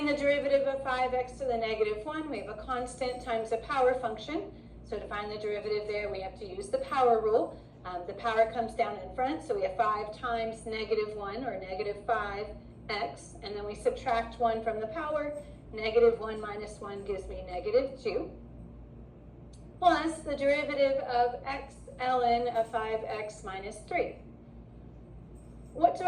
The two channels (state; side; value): identical; both; correlation 1.00